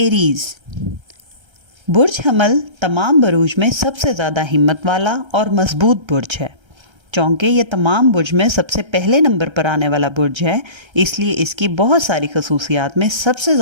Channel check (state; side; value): late; left; 1.3 ms